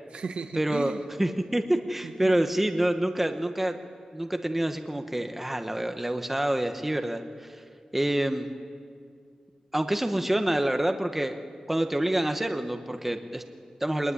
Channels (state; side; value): normal; both; correlation 0.98